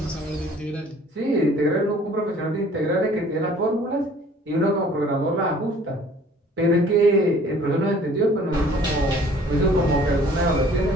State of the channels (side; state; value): both; normal; correlation 0.53